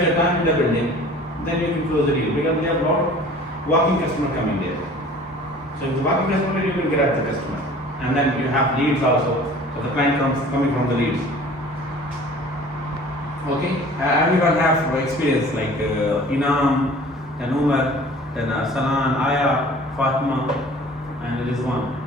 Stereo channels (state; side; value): normal; both; correlation 0.47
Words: your time in the building, then you can close the deal because we have a lot of walking customer coming there. So if the walking customer, you will grab the customer, and then you have leads also. So the client comes coming from the leads. Okay, everyone have experience like Inam, then Umar, then Salan, Aya, Fatima, and there is one,